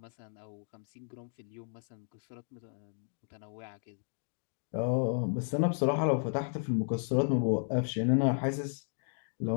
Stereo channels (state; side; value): silent; right; digital silence